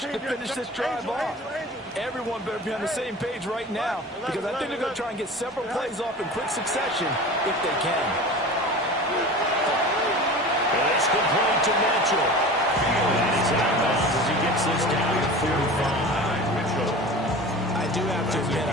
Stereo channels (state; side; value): normal; both; correlation 0.36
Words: to finish this drive off. Everyone better be on the same page right now, because I think they're going to try and get several plays off in quick succession if they can. It's complete to Mitchell. And he's out of bounds as he gets this down to 45. I do have to admit,